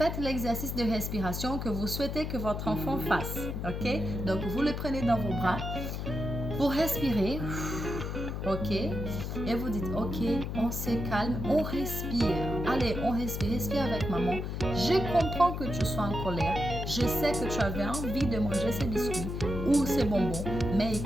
l'exercice de respiration que vous souhaitez que votre enfant fasse, ok? Donc, vous le prenez dans vos bras, vous respirez, ok? Et vous dites, ok, on se calme, on respire. Allez, on respire avec maman. Je comprends que tu sois en colère. Je sais que tu avais envie de manger ces biscuits ou ces bonbons. Mais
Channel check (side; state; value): left; noise; hum, 4 dB below the sound